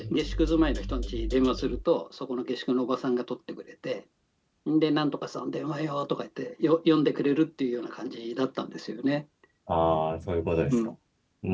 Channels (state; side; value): identical; both; correlation 1.00